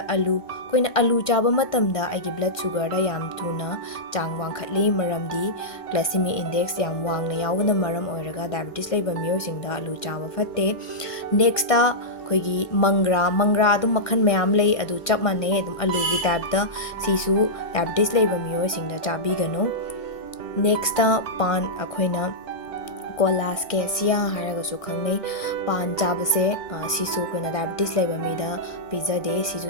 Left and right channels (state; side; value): late; right; 1.5 ms